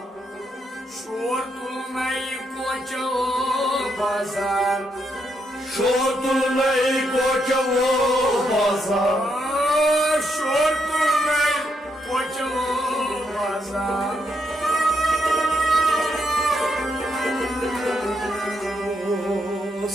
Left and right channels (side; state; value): both; normal; correlation 0.78